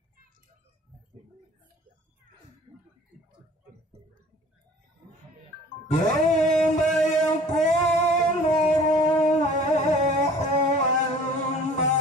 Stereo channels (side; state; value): both; normal; correlation 0.48